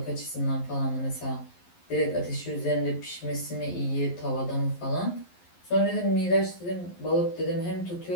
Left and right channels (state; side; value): late; right; 11 ms